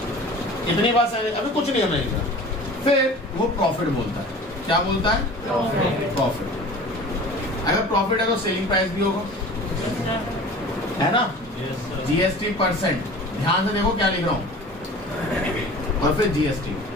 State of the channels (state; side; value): normal; both; correlation 0.41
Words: इतनी बात अभी कुछ नहीं हमने लिखा। फिर वो प्रॉफिट बोलता है, क्या बोलता है? प्रॉफिट। अगर प्रॉफिट है तो सेलिंग प्राइस भी होगा, है ना? जीएसटी परसेंट, ध्यान से देखो क्या लिख रहा हूं, और फिर जीएसटी।